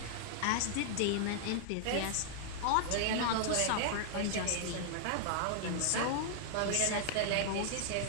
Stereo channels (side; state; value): both; different; correlation -0.01